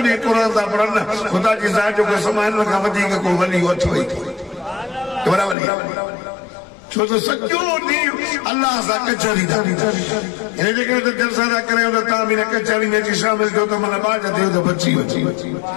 ॾींहुं क़ुरान था पढ़नि, ख़ुदा जी ज़ात जो कसम आहे, हिन खां वधीक को वली अथव ई वॾा वली। छो त सॼो ॾींहुं अल्लाह सां कचहरी था। हिन जे करे त जलसा था करियो त तव्हां बि हिन कचहरी में अची शामिल थियो त माना बाज थियो त बची वची।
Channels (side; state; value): right; drops out; at 5.6 s